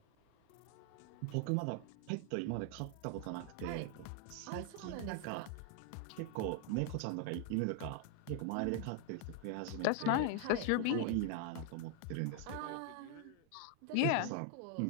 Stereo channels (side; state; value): both; different; correlation 0.00